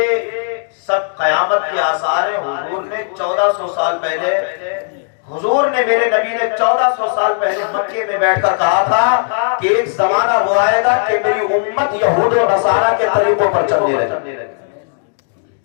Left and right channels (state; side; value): silent; right; digital silence